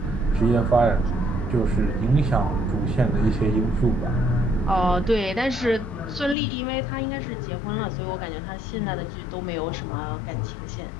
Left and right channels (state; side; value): drops out; right; at 6.4 s